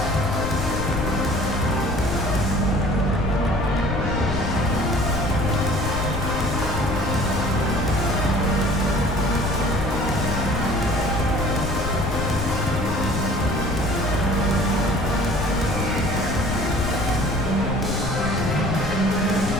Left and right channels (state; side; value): noise; left; rumble, 5 dB below the sound